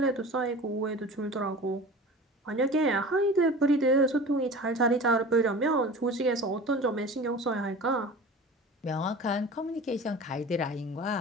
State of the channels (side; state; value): both; normal; correlation 0.37